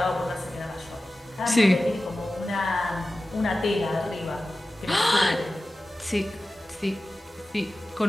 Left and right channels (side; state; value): both; normal; correlation 0.95